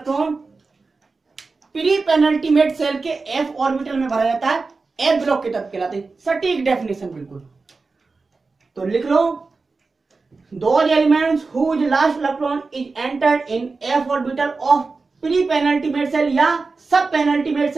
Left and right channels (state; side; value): quieter; left; 4.1 dB